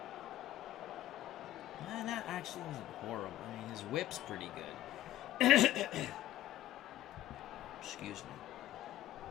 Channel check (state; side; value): quieter; right; 13.7 dB